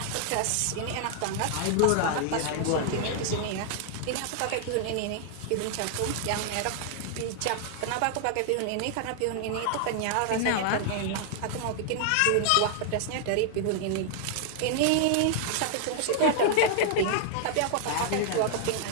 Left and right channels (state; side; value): different; both; correlation 0.00